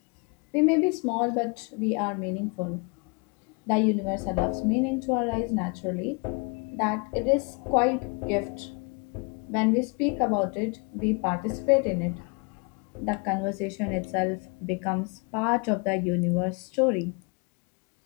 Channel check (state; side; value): quieter; right; 32.9 dB